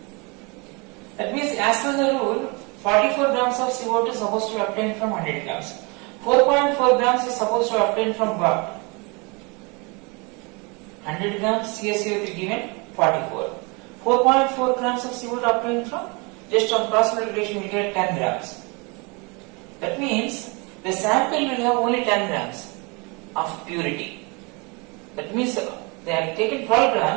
That means as per the rule, 44 grams of CO2 is supposed to be obtained from 100 grams. 4.4 grams is supposed to be obtained from what? 100 grams CaCO3 given 44. 4.4 grams of CO2 obtained from, just on cross multiplication we get 10 grams. That means the sample will have only 10 grams of purity. That means they have taken 12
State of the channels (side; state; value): left; quieter; 29.7 dB